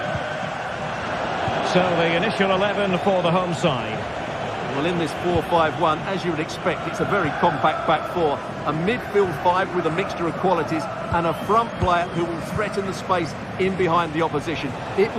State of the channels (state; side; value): identical; both; correlation 1.00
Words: So the initial 11 for the home side. Well, in this 4-5-1, as you would expect, it's a very compact back four. A midfield five with a mixture of qualities and a front player who will threaten the space in behind the opposition. It